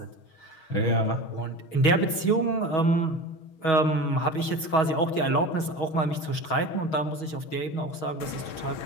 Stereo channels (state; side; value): late; right; 6.3 ms